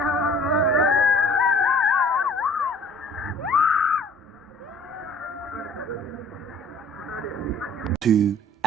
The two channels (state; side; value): normal; both; correlation 0.52